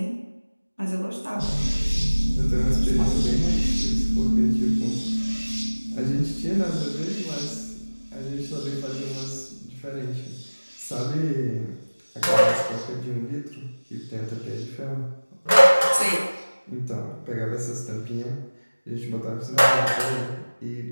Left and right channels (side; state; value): both; inverted; correlation -1.00